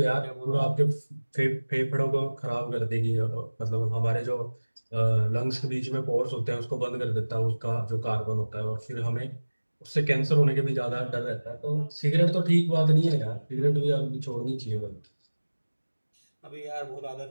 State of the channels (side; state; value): both; inverted; correlation -1.00